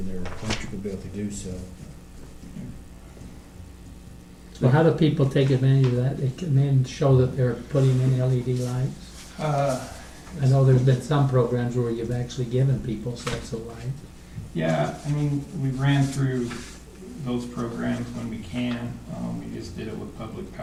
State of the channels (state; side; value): identical; both; correlation 1.00